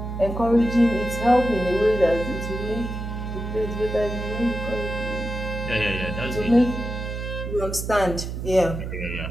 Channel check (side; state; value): right; noise; hum, 5 dB below the sound